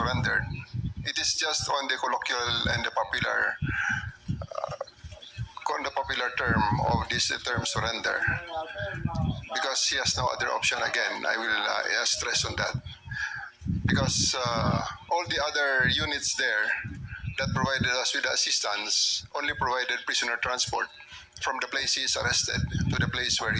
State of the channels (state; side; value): identical; both; correlation 1.00